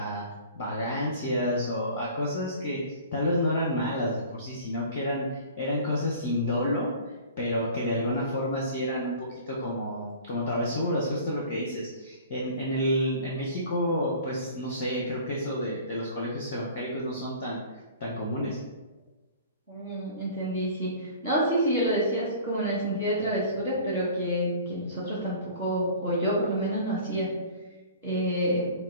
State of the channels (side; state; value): both; inverted; correlation -0.44